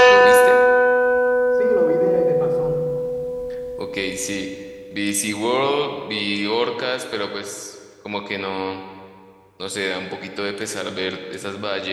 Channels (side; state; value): both; identical; correlation 1.00